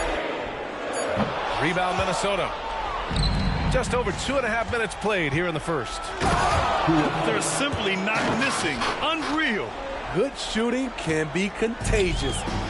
Rebound Minnesota. Just over 2.5 minutes played here in the first. They're simply not missing. Unreal. Good shooting can be contagious.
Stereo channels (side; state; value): both; identical; correlation 1.00